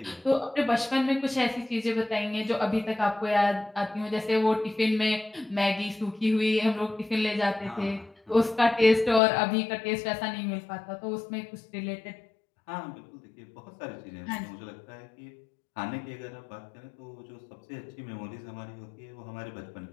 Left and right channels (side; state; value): right; drops out; at 9.2 s